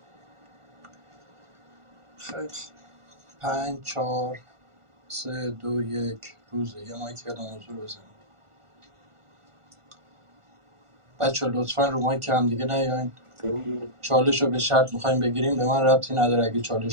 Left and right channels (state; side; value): late; left; 1.4 ms